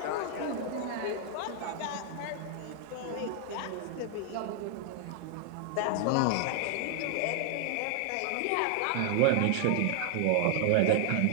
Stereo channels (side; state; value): both; different; correlation 0.00